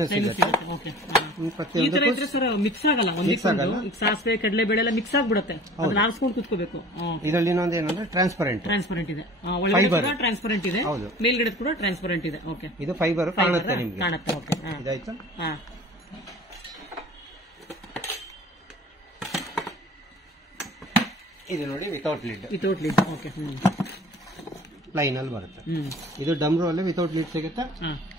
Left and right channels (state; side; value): normal; both; correlation 0.45